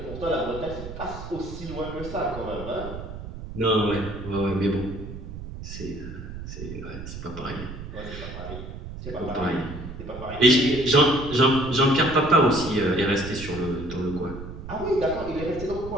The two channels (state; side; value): noise; right; rumble, 10 dB below the sound